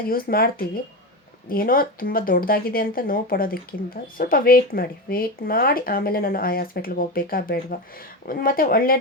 ಯೂಸ್ ಮಾಡ್ತೀವಿ. ಏನೋ ತುಂಬ ದೊಡ್ಡದಾಗಿದೆ ಅಂತ ನೋವು ಪಡೋದಕ್ಕಿಂತ ಸ್ವಲ್ಪ ವೆಯ್ಟ್ ಮಾಡಿ ಆಮೇಲೆ ನಾನು ಆ ಹಾಸ್ಪಿಟ್ಲಿಗೆ ಹೋಗ್ಬೇಕಾ ಬೇಡವಾ, ಮತ್ತು ಒಳ್ಳೆ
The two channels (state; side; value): normal; both; correlation 0.19